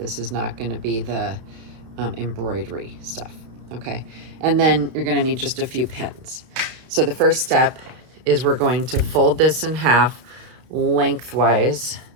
is not going to be the embroidery stuff. Okay. And then you're going to need just a few pins. So the first step is we're going to fold this in half lengthwise.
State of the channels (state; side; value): late; left; 32 ms